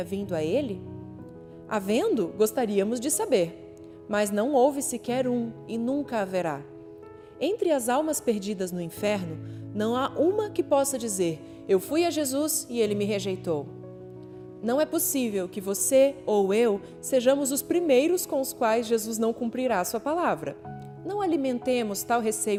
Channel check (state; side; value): identical; both; correlation 1.00